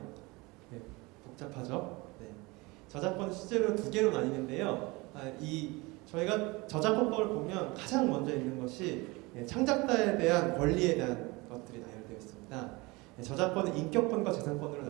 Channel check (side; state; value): left; quieter; 24.4 dB